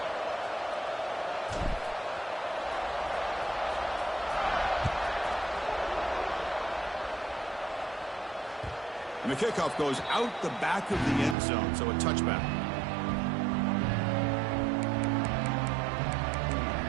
And the kickoff goes out the back of the end zone, so a touchback.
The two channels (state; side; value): drops out; left; at 11.4 s